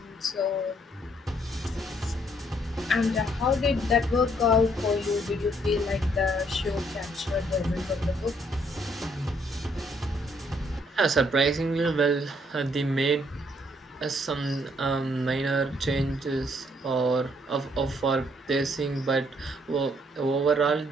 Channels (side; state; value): both; normal; correlation 0.68